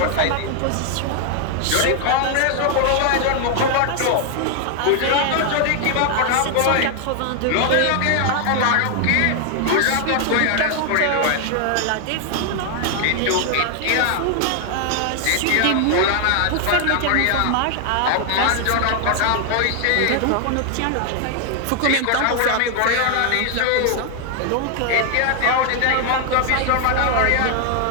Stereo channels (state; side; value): different; both; correlation 0.00